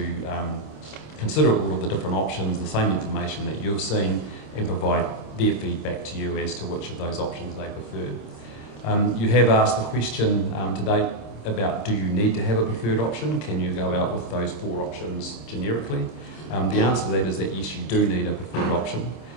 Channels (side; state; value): right; late; 26 ms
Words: consider all of the different options, the same information that you've seen, and provide their feedback to you as to which of those options they prefer. You have asked the question to date about, do you need to have a preferred option? Can you go out with those 4 options generically? The answer to that is that yes, you do need a preferred option.